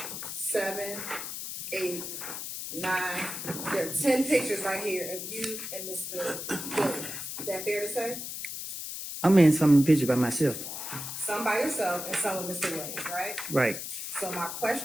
7, 8, 9. There are 10 pictures right here of you and Mr. Williams. Is that fair to say? I'm in some picture by myself. Some by yourself and some with Mr. Williams, right? Right. So my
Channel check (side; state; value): left; noise; hiss, 6 dB below the sound